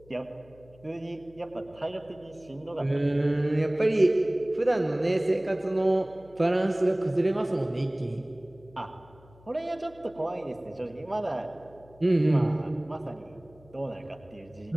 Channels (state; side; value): noise; left; hum, 25 dB below the sound